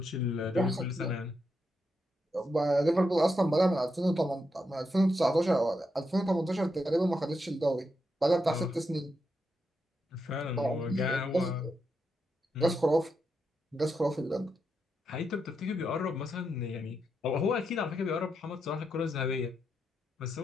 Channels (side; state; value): both; normal; correlation 0.83